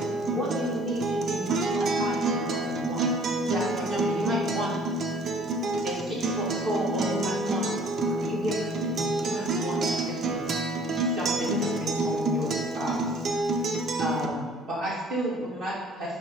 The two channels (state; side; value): normal; both; correlation 0.54